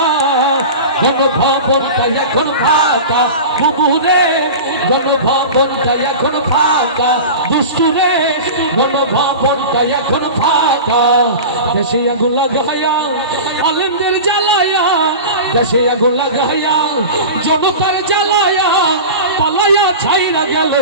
গণভবনটা এখন ফাঁকা বুবুরে, গণভবনটা এখন ফাঁকা দুষ্টুরে, গণভবনটা এখন ফাঁকা। দেশে আগুন লাগাইয়া আলেমদের জ্বালায়া, দেশে আগুন লাগাইয়া জনতার জ্বালায়া, পালাইয়া ছাইরা গেল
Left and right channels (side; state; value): both; inverted; correlation -0.31